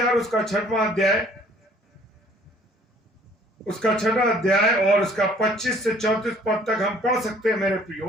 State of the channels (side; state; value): both; normal; correlation 0.56